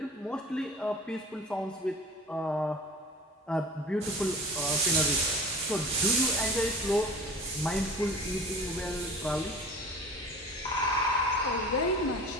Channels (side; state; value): both; normal; correlation 0.40